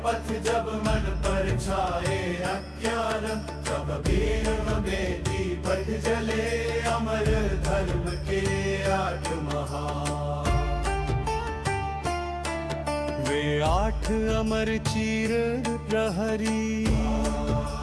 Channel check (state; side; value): identical; both; correlation 1.00